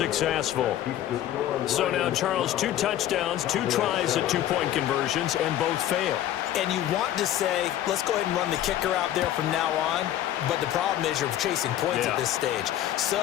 So now, Charles, 2 touchdowns, 2 tries at 2-point conversions, and both fail. And you want to say, let's go ahead and run the kicker out there from now on. But the problem is you're chasing points at this stage. So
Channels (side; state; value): right; quieter; 12.3 dB